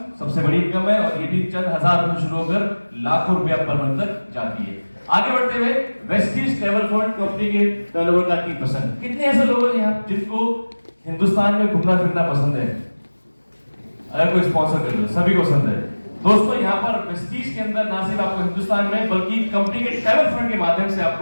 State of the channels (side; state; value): both; inverted; correlation -1.00